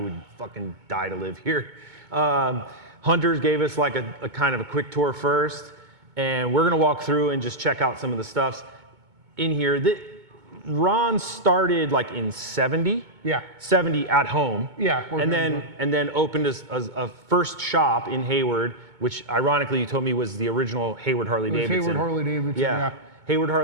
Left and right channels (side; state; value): left; late; 2.2 ms